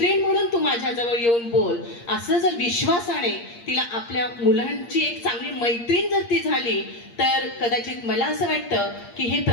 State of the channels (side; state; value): right; late; 8.6 ms